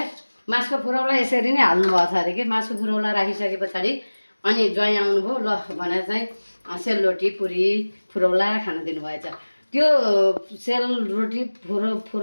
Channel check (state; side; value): inverted; both; correlation -1.00